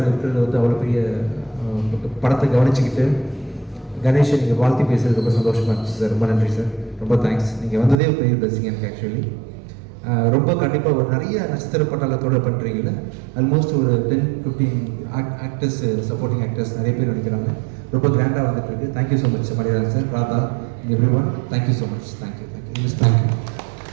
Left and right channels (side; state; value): left; drops out; at 8.0 s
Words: இருக்கிறது வந்து அவ்வளோ பெரிய படத்தை கவனிச்சுக்கிட்டு கணேஷை நீங்கள் வாழ்த்தி பேசுறது ரொம்ப சந்தோஷமாக இருந்துச்சு சார். ரொம்ப நன்றி சார். ரொம்ப தேங்க்ஸ். நீங்கள் வந்ததே ஒரு பெரிய பிளஸிங் எனக்கு ஆக்சுவலி. ரொம்ப கண்டிப்பாக ஒரு நிறைய நட்சத்திர பட்டாளத்தோடு பண்ணுறீங்கள. ஆல்மோஸ்ட் ஒரு 10-15 ஆக்டர்ஸ், சப்போர்ட்டிங் ஆக்டர்ஸ் நிறைய பேர் நடிக்கிறாங்க. ரொம்ப கிராண்டாக வந்துட்டு இருக்கு. தேங்க்யூ ஸோ மச் மரியாதை sir, Radha, every one. Thank you so much. Thank you thank you thank you